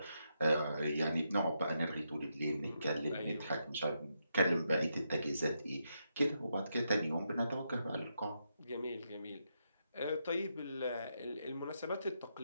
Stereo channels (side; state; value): both; inverted; correlation -0.82